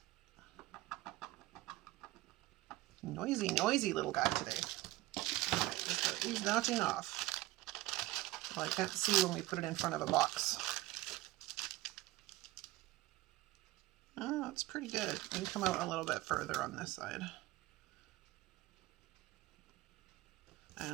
Noisy little guy today. Right, he's not enough. Well, I can't see when we put it in front of a box. Oh, it's pretty good. We can come out a little bit further on this side.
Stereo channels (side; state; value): left; quieter; 18.2 dB